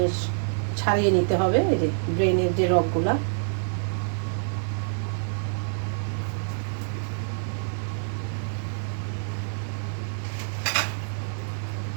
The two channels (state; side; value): silent; left; digital silence